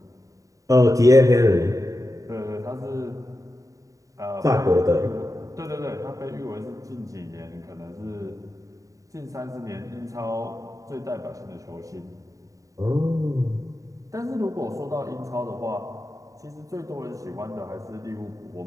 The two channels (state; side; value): late; left; 0.16 ms